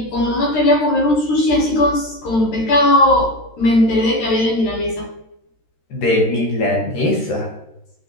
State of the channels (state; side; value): late; right; 13 ms